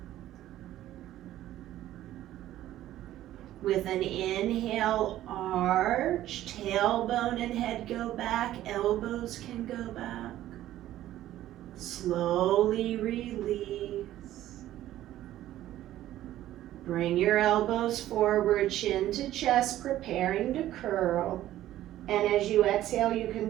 With an inhale, arch, tailbone and head go back, elbows can go back. Slowly release. Bring your elbows forward, chin to chest, preparing to curl. And as you exhale, you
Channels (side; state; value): left; quieter; 13.6 dB